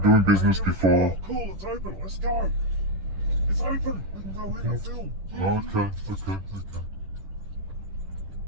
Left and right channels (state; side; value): late; left; 10 ms